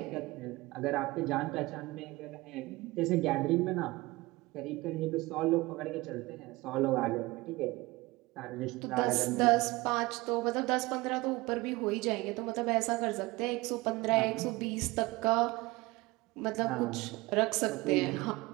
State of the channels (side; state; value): left; quieter; 21.5 dB